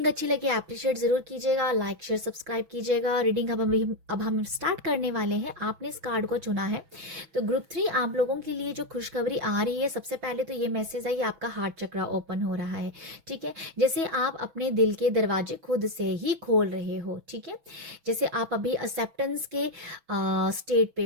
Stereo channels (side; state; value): left; late; 6.1 ms